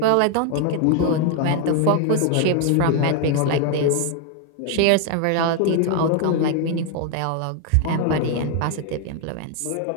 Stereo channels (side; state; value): both; different; correlation 0.01